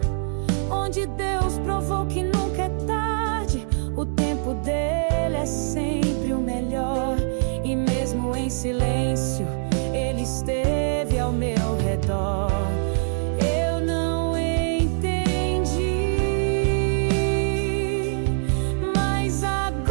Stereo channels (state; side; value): silent; left; digital silence